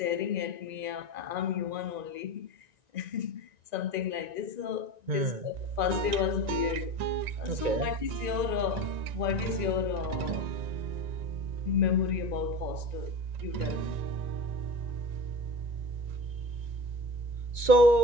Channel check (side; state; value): left; late; 1.9 ms